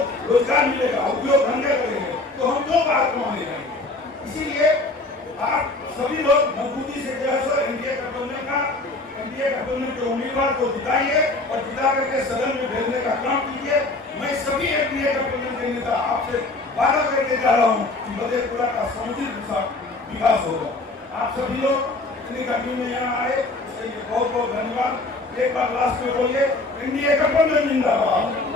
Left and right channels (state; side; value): quieter; right; 3.0 dB